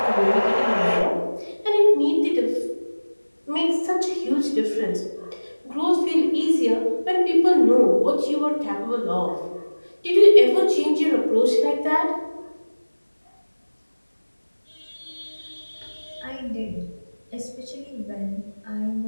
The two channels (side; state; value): both; inverted; correlation -1.00